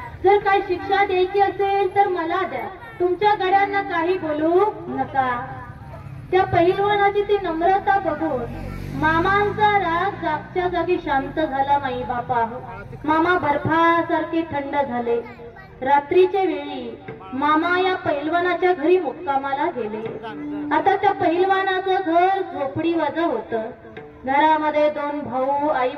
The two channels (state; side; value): identical; both; correlation 1.00